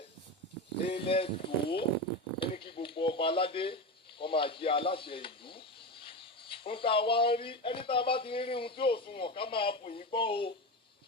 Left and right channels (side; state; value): both; normal; correlation 0.20